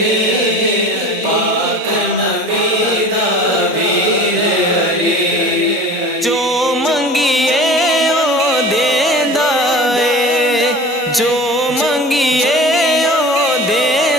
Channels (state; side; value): normal; both; correlation 0.39